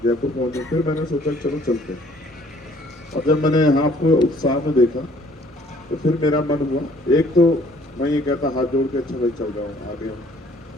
जयपुर पहुंचे। फिर मैंने सोचा चलो चलते। और जब मैंने यहाँ आपको उत्साह में देखा तो फिर मेरा मन हुआ, एक तो मैं ये कहता हाथ जोड़ के अच्छा भाई चल रहा हूँ आगे हम।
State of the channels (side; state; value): both; normal; correlation 0.59